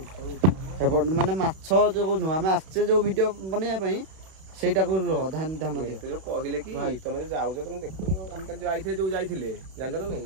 ଏପଟେ ମାନେ ମାଛ ଯୋଉ ନୁହଁ ଆମେ ଆସିଛେ ଯୋଉ ଭିଡିଓ ବନେଇବା ପାଇଁ ସେଇଟାକୁ ଧ୍ୟାନ ଦିଅ କହିଲେ କି ଭାଇ ତମେ ଯୋଉ ଯାଉଛ ତମେ ଦେଖୁନ ଆମେ କାଲି ଯୋଉ ଯାଇଥିଲେ ଜାଣିଛ ନା ନାଇଁ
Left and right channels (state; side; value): late; left; 31 ms